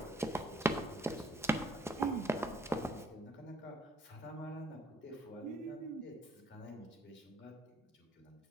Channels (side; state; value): both; normal; correlation 0.62